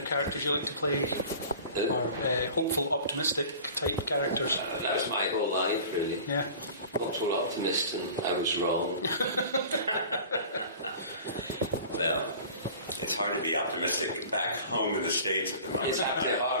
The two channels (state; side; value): inverted; both; correlation -0.41